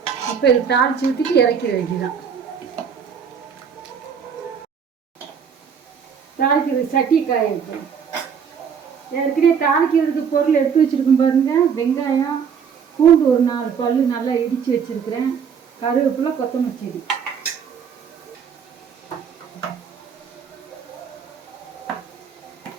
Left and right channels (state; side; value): quieter; left; 7.0 dB